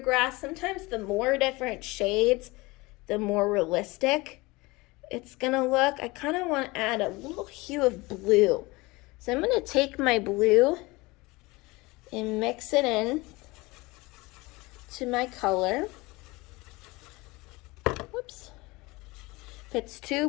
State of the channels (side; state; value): right; quieter; 23.0 dB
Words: sometimes the more different shades, the more realistic it's gonna look. I kind of want to add a little hue of blue. So I'm gonna take my blue and mix it in to my color. Whoops. If it's